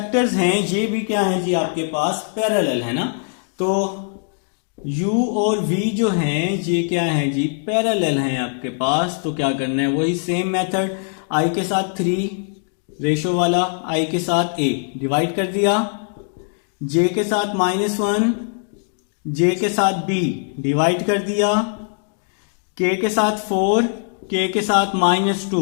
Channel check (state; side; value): silent; right; digital silence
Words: हैं ये भी क्या है जी आपके पास पैरेलल है ना। तो u और v जो हैं ये क्या है जी, पैरेलल हैं आपके पास। तो क्या करना है, वही सेम मेथड, i के साथ 3 रेशो वाला, i के साथ a डिवाइड कर दिया, j के साथ -1, j के साथ b डिवाइड कर दिया, k के साथ 4, k के साथ